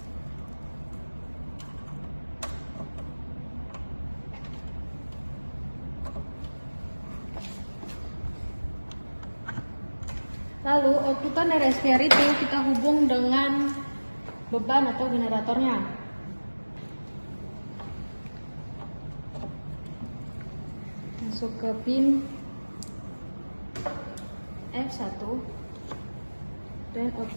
Lalu outputan dari SVR itu kita hubung dengan beban atau generatornya. Masuk ke pin F1 dan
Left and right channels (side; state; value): both; inverted; correlation -1.00